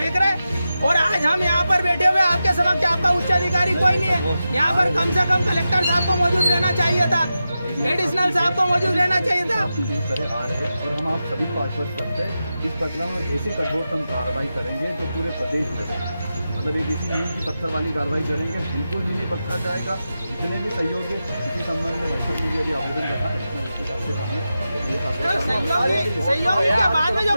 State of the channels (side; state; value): both; inverted; correlation -0.91